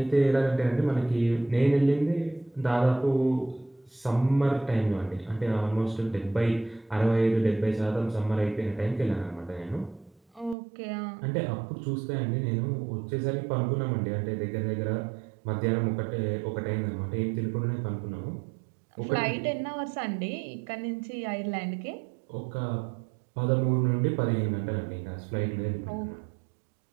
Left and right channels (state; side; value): drops out; left; at 10.6 s